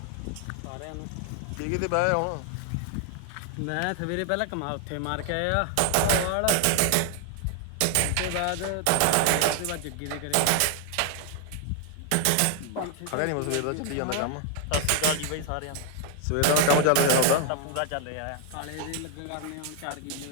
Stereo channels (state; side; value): different; both; correlation 0.00